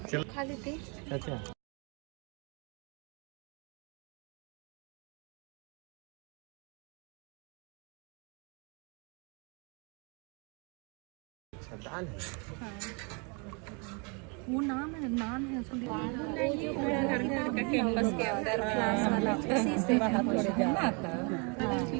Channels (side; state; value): left; quieter; 33.6 dB